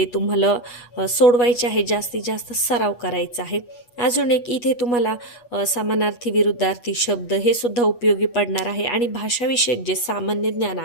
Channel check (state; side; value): late; right; 8.3 ms